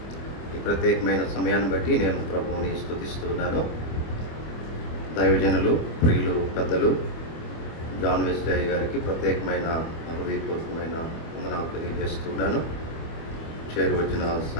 ఈ ప్రత్యేకమైన సమయాన్ని బట్టి నేను ప్రభువుని స్తుతిస్తున్నాను. దైవజనులు, ప్రియులు, పెద్దలు జాన్ వెస్లీ గారికి ప్రత్యేకమైన హృదయపూర్వకమైన వందనాలు తెలియజేస్తున్నాను. చేరువచ్చిన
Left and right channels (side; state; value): right; late; 25 ms